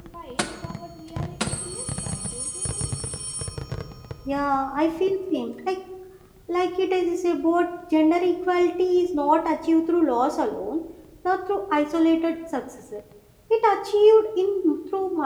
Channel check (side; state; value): both; identical; correlation 1.00